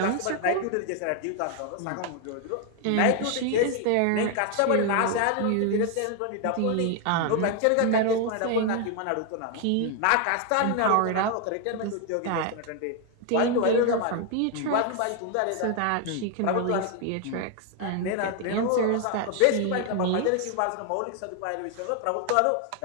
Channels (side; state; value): both; different; correlation 0.00